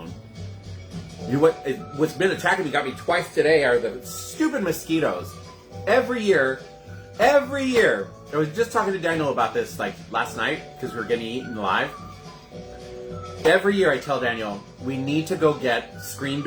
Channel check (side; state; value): both; identical; correlation 1.00